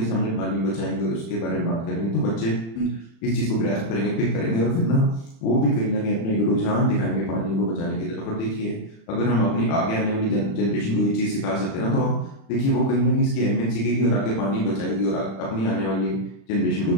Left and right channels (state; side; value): late; right; 36 ms